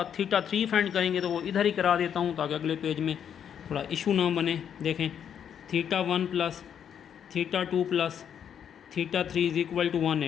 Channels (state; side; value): quieter; right; 8.5 dB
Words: थीटा 3 फाइंड करेंगे तो वो इधर ही करा देता हूँ ताकि अगले पेज में थोड़ा इशू ना बने। देखें theta 1 plus theta 2 plus theta 3 is equal to